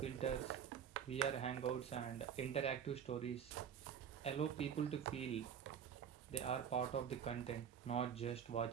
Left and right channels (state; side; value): quieter; left; 8.2 dB